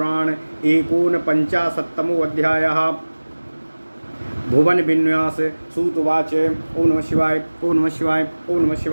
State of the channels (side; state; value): both; inverted; correlation -1.00